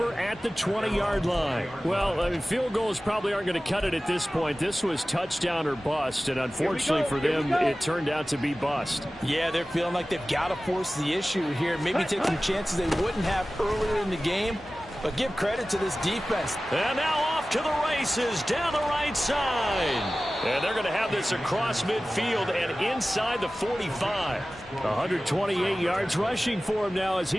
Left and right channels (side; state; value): both; normal; correlation 0.96